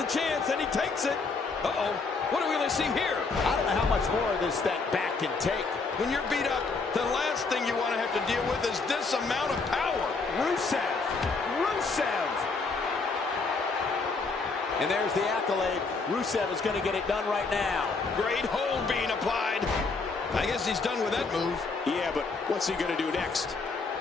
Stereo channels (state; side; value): quieter; right; 4.2 dB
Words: chance and he takes it. Uh-oh. What do we really see here? I don't know how much more of this that back can take. When you're beat up, the last thing you want to have to deal with is this amount of power. Rusev. Rusev. And there's the accolade. Rusev is going to get it done right now. Great hold being applied. I guess he's done with that move. Yeah, but what's he going to do next?